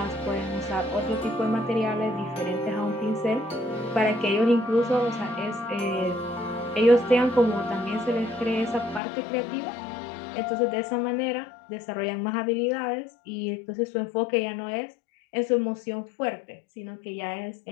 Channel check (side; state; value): right; drops out; at 9.0 s